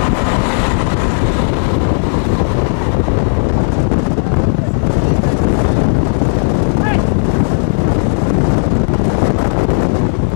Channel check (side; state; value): right; silent; digital silence